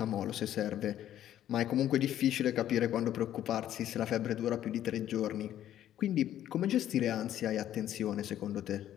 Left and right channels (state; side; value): quieter; right; 11.7 dB